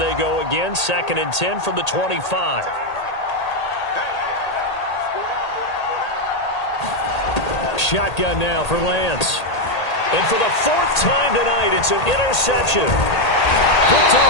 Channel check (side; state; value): right; late; 1.8 ms